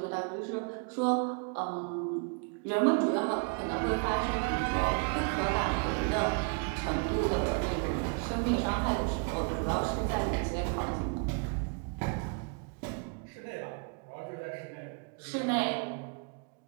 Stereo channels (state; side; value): quieter; left; 37.2 dB